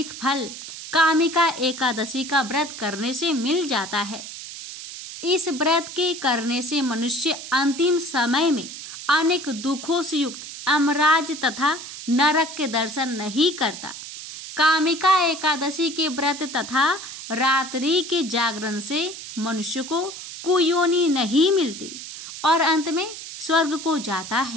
फल कामिका एकादशी का व्रत करने से मिल जाता है। इस व्रत के करने से मनुष्य अंतिम समय में अनेक दुखों से युक्त अमराज तथा नरक के दर्शन नहीं करता। कामिका एकादशी के व्रत तथा रात्रि के जागरण से मनुष्य को कुयोनि नहीं मिलती और अंत में स्वर्ग को जाता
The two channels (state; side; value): noise; right; hiss, 11 dB below the sound